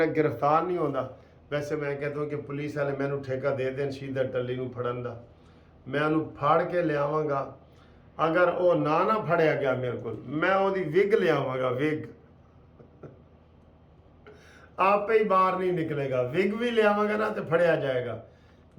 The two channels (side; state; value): both; identical; correlation 1.00